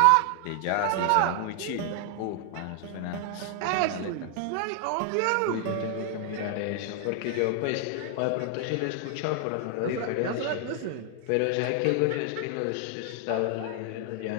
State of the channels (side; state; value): both; different; correlation 0.00